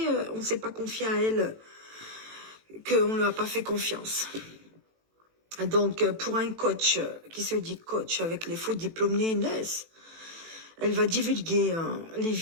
on ne s'est pas confié à elle, qu'on ne lui a pas fait confiance. Donc, pour un coach qui se dit coach avec les faux diplômes NES, elle va divulguer les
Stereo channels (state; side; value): late; left; 18 ms